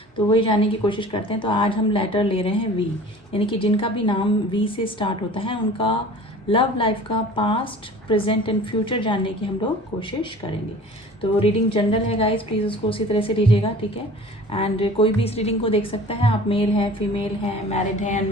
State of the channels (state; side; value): normal; both; correlation 0.43